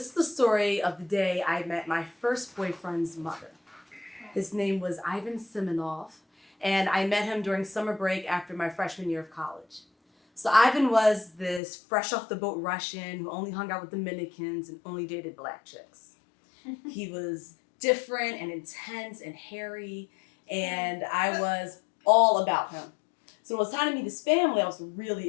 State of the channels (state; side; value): drops out; right; at 11.6 s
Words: is the story of the day I met my first boyfriend's mother. His name was Ivan Simonov, and I met him during summer break after my freshman year of college. So Ivan was this fresh off the boat Russian who only hung out with Dominicans and only dated black chicks. He was different and intense and hairy, and I was all about him. So when it was time to meet his family, I was really